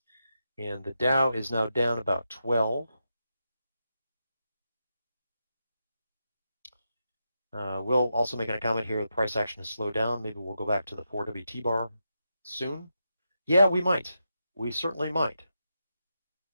And the Dow is now down about 12. Will also making a comment here, the price action has slowed down. Maybe we'll go back to the 4WT bar soon. Yeah, we might. We certainly might.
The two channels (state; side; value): inverted; both; correlation -0.86